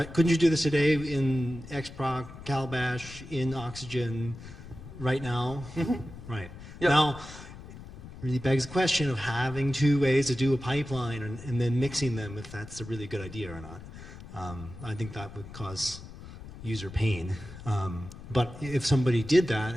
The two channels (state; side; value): noise; left; rumble, 15 dB below the sound